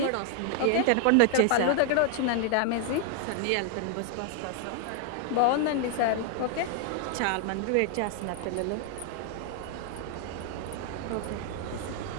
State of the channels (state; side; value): different; both; correlation 0.00